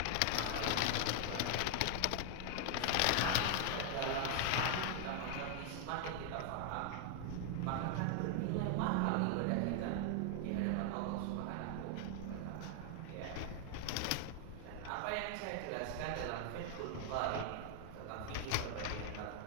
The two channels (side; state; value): both; different; correlation 0.00